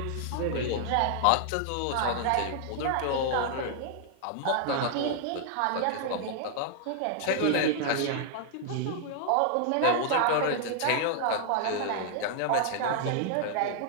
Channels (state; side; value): different; both; correlation -0.01